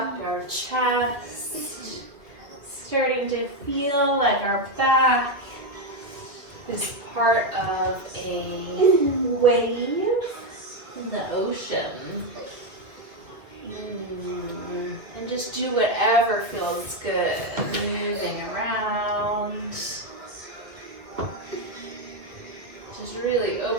our chest, starting to feel like our back is part of a wave in the ocean. And just do whatever feels good, moving around. Just really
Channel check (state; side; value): late; left; 2.2 ms